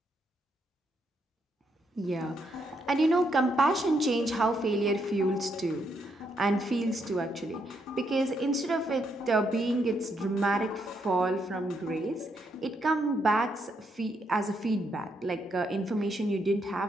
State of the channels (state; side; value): normal; both; correlation 0.77